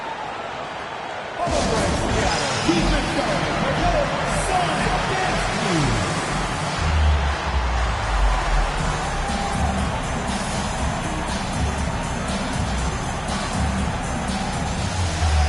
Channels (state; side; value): identical; both; correlation 1.00